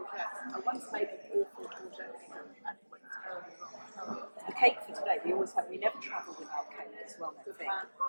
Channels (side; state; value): both; inverted; correlation -1.00